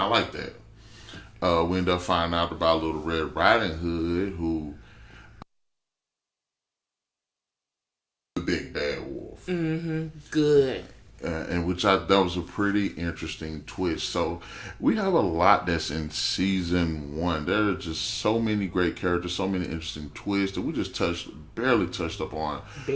like that. We end up finding out about Little Red Riding Hood, who the big bad wolf. Good. And that was a pretty interesting twist. So we have a lot that's in season 1. There are just so many great characters, so many interesting twists that we just barely touched up on.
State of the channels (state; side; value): identical; both; correlation 1.00